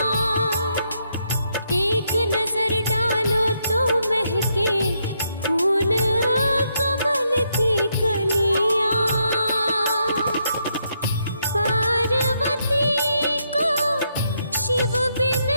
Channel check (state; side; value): inverted; both; correlation -0.77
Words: एक नजर डालो तो महके फूल कमल की कलियां। पार्वती को शिव बिन